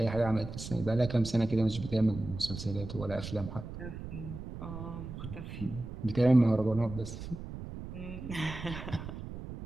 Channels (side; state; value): right; noise; rumble, 9 dB below the sound